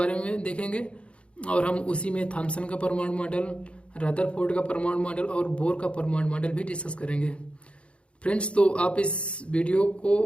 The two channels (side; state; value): right; late; 0.059 ms